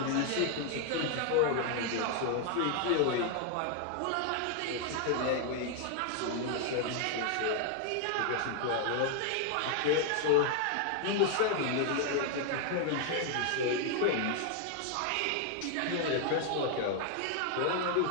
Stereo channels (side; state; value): both; different; correlation 0.00